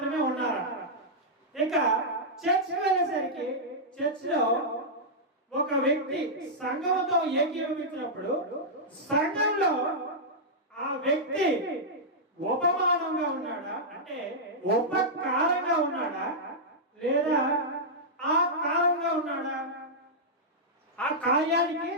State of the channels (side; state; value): both; normal; correlation -0.09